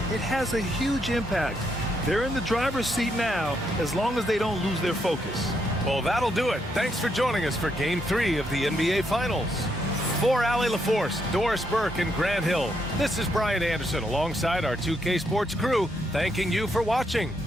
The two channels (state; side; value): normal; both; correlation 0.77